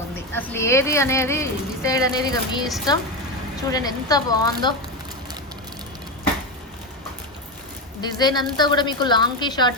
అసలు ఏది అనేది డిసైడ్ అనేది ఇక మీ ఇష్టం. చూడండి ఎంత బాగుందో. డిజైన్ అంతా కూడా మీకు లాంగ్కి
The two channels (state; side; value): normal; both; correlation 0.14